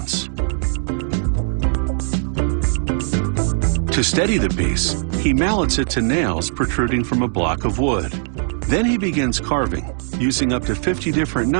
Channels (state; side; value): silent; left; 66 dB below the other